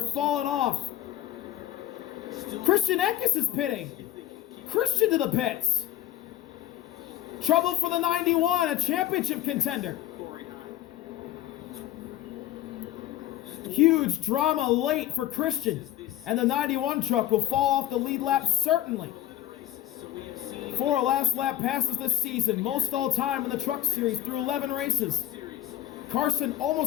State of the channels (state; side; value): quieter; right; 12.8 dB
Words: off. Christian Eckes is pitting. Christian to the pits. Trouble for the 91, a championship contender. Huge drama late for Christian, and the 91 truck will fall off the lead lap certainly. 4 last lap passes this season, most all time in the Truck Series through 11 races. Carson